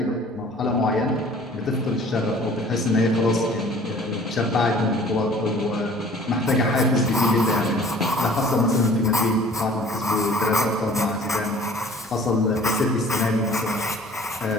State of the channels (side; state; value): right; noise; rumble, 29 dB below the sound